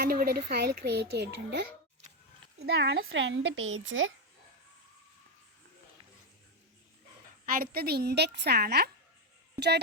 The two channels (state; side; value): normal; both; correlation 0.07